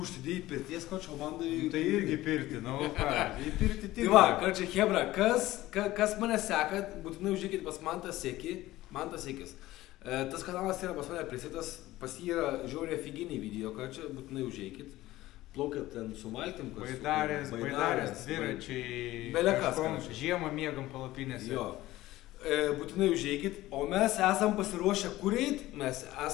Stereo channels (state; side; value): quieter; right; 16.6 dB